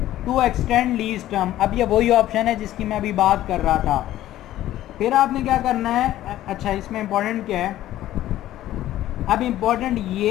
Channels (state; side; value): quieter; right; 13.8 dB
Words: to extend lease term. अब ये वही ऑप्शन है जिसकी मैं अभी बात कर रहा था। फिर आपने क्या करना है, अच्छा इसमें इंपॉर्टेंट क्या है, अब इम्पोर्टेंट